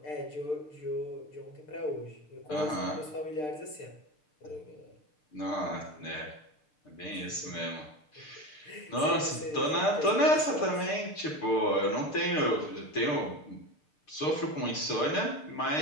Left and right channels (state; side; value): late; right; 6.6 ms